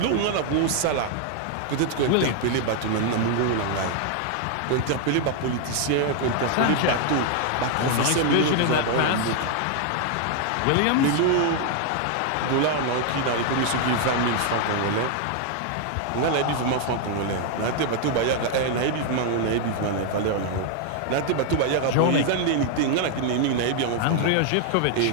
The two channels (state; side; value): different; both; correlation 0.00